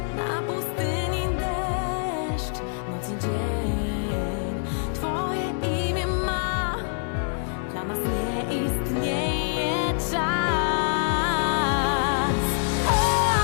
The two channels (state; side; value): silent; right; digital silence